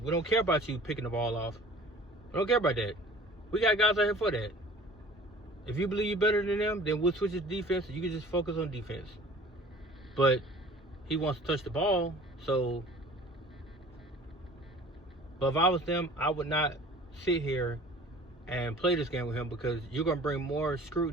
don't care about you picking the ball off. We don't care about that. We got guys out here for that. If you believe you're better than them, then we'll switch his defense and you can just focus on defense. But he wants to touch the ball, so. But if I was them, I would not sit here and play this game with him, because you're going to bring more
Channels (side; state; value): both; normal; correlation 0.46